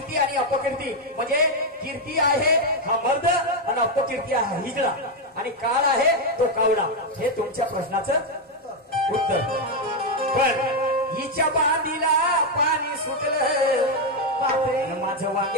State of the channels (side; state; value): both; normal; correlation 0.03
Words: आणि अपकीर्ती म्हणजे कीर्ती आहे हा मर्द आणि अपकीर्ती आहे हिजडा आणि काळ आहे तो कावडा. हे तुमच्या प्रश्नाचं उत्तर. पण हिच्या बांधीला पाणी सुटलं, माझं